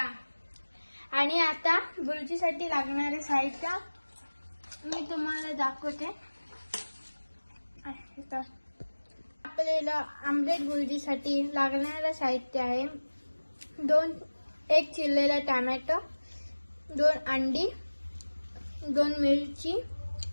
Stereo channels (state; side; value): inverted; both; correlation -1.00